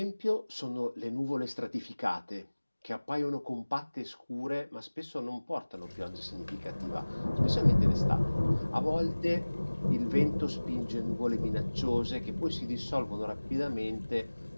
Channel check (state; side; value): inverted; both; correlation -1.00